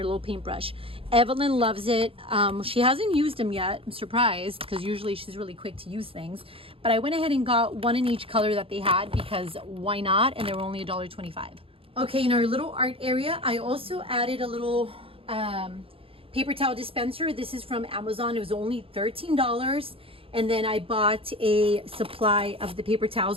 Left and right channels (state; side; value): late; left; 0.27 ms